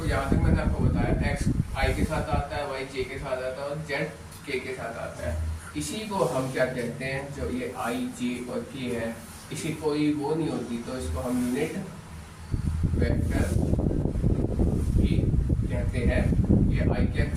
यहाँ तक मैंने आपको बताया, एक्स आई के साथ आता है, वाई जे के साथ आता है, और जेड के साथ आता है। इसी को हम क्या कहते हैं, जो ये आई जे और के है, इसी कोई वो नहीं होती तो इसको हम यूनिट वेक्टर भी कहते हैं, ये आई कैप,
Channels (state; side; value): identical; both; correlation 1.00